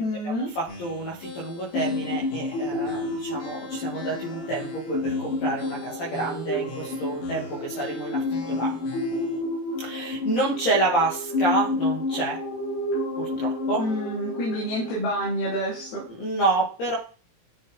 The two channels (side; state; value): right; late; 17 ms